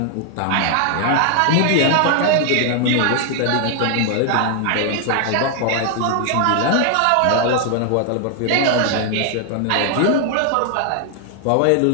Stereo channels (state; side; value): different; both; correlation 0.00